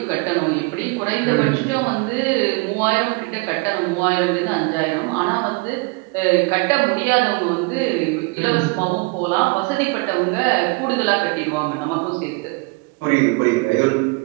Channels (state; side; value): quieter; left; 29.1 dB